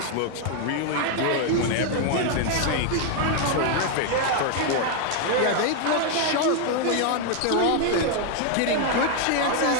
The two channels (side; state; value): both; different; correlation 0.00